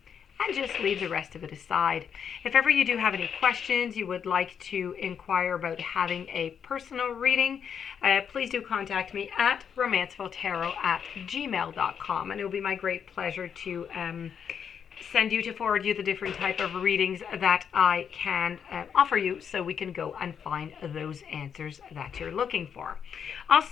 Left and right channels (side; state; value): right; quieter; 7.5 dB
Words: and just leave the rest of it aside. If ever you do have any questions, you would like to inquire about having a personal reading, please do contact me at romancefulltarot@gmail.com, and it will be my great pleasure to forward you the different type of readings that I can offer you, so we can go and find those answers that you're looking for.